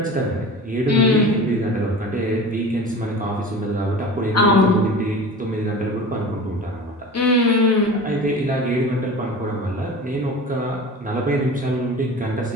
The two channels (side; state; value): both; normal; correlation 0.36